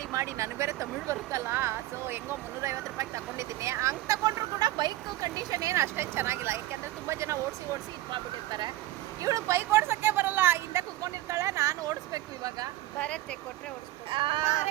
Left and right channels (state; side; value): quieter; left; 16.2 dB